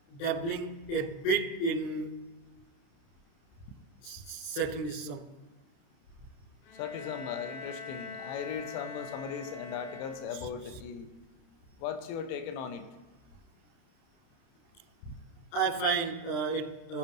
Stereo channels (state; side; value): late; right; 30 ms